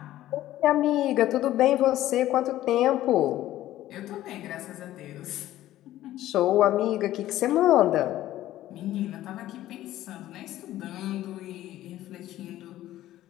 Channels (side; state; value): right; quieter; 14.2 dB